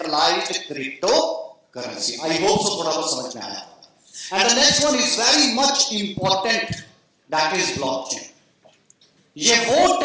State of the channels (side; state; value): both; identical; correlation 1.00